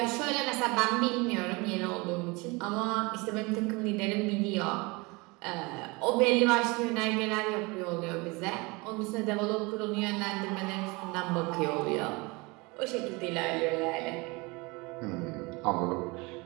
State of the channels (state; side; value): quieter; left; 26.0 dB